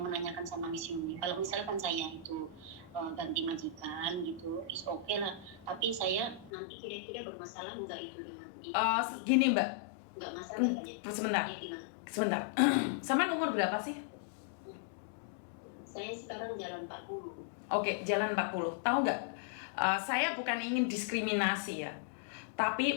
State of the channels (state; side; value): drops out; right; at 6.5 s